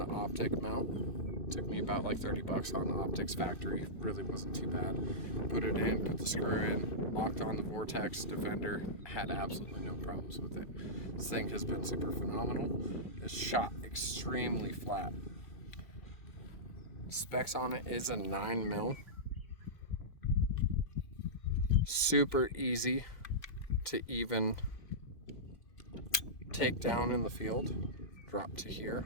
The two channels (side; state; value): right; late; 2.6 ms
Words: optic mount. Took me about like 30 bucks on the optics factory. Really wasn't too bad. Put it in, put the screw in, locked on the Vortex Defender. Had absolutely no problems with it. This thing has been super phenomenal. It's shot extremely flat. Specs on it is a 9 mil. Super easy to even take down in the field. Drop to here.